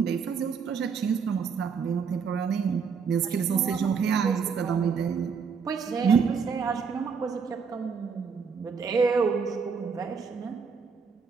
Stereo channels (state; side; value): quieter; left; 5.9 dB